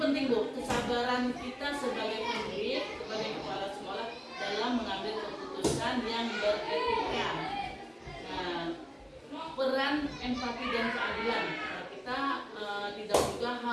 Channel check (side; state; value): both; identical; correlation 1.00